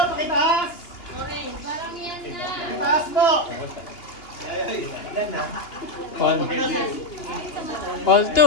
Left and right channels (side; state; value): right; late; 2.9 ms